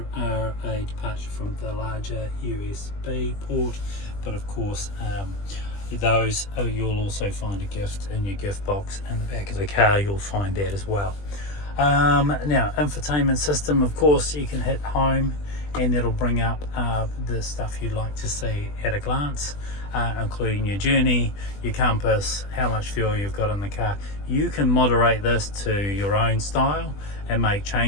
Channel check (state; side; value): late; right; 20 ms